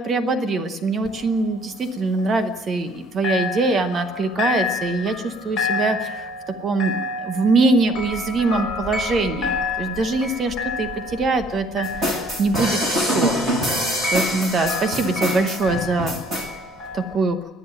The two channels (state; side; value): normal; both; correlation 0.59